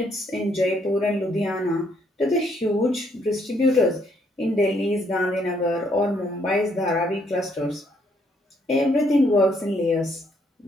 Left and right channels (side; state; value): both; normal; correlation 0.70